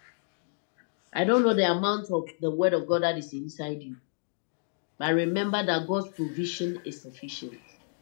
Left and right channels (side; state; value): right; silent; digital silence